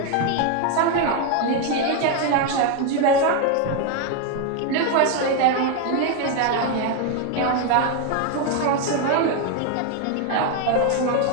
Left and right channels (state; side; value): different; both; correlation 0.01